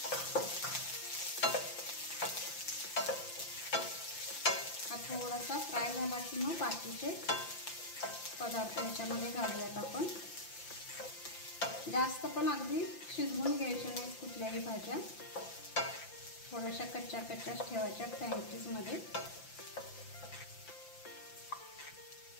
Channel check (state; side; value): late; right; 5.9 ms